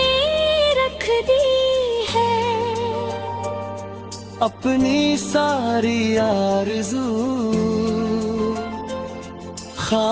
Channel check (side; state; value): both; identical; correlation 1.00